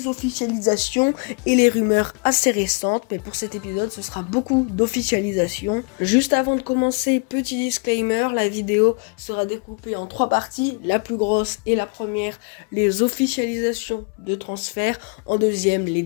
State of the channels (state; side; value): quieter; right; 35.9 dB